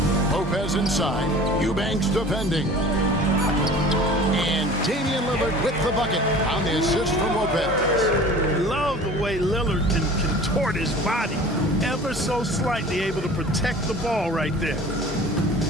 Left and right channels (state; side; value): normal; both; correlation 0.43